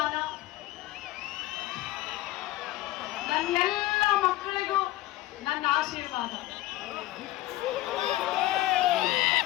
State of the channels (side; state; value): right; quieter; 16.5 dB